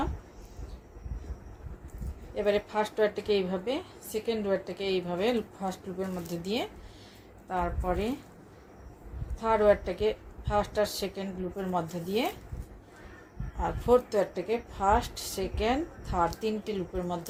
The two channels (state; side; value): identical; both; correlation 1.00